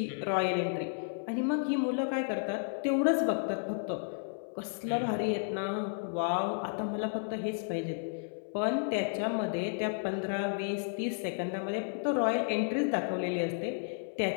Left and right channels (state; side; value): silent; right; 56 dB below the other